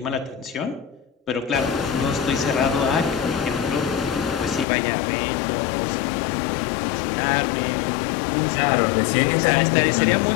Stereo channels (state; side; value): drops out; right; at 4.7 s